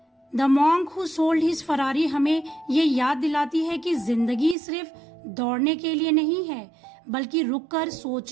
The monk who sold his Ferrari हमें ये याद दिलाती है कि जिंदगी सिर्फ दौड़ने के लिए नहीं है बल्कि रुककर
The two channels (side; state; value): left; drops out; at 4.5 s